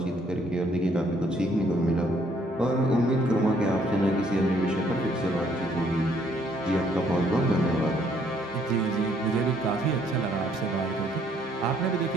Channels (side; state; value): both; normal; correlation 0.66